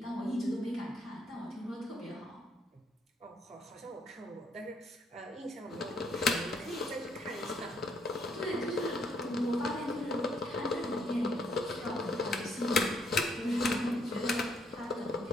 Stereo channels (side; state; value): both; normal; correlation 0.71